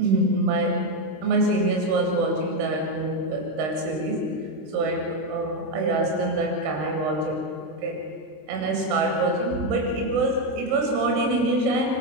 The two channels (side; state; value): left; late; 26 ms